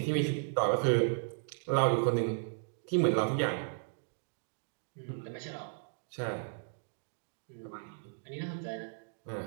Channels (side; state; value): left; silent; digital silence